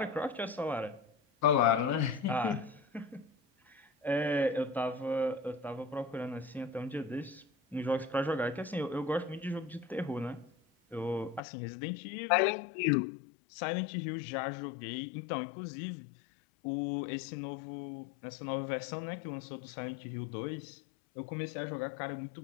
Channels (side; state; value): right; drops out; at 11.4 s